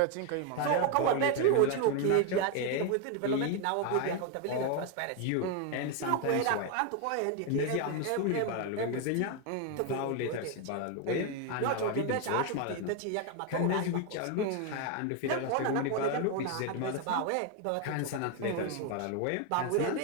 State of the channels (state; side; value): different; both; correlation 0.01